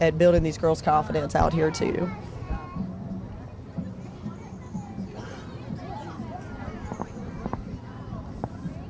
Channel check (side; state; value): both; identical; correlation 1.00